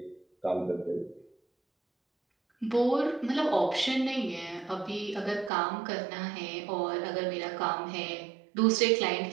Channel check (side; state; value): left; drops out; at 5.5 s